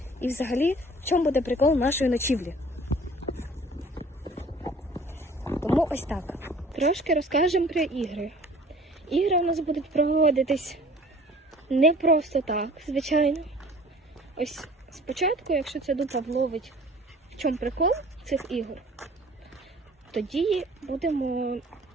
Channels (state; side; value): normal; both; correlation 0.49